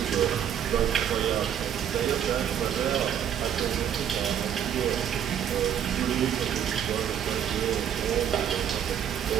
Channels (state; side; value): quieter; left; 9.3 dB